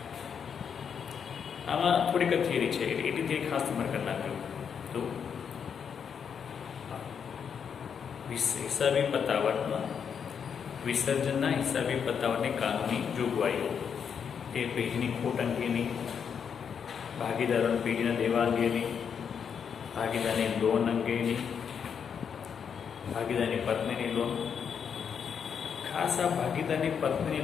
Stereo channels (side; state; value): right; quieter; 7.2 dB